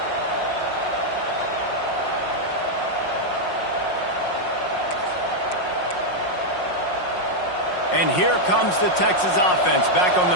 And here comes the Texas offense back on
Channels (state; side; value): late; right; 5.5 ms